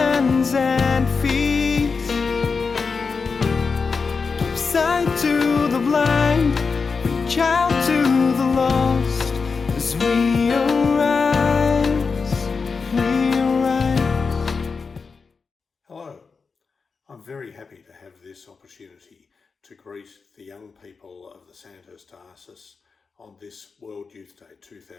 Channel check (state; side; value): quieter; right; 4.9 dB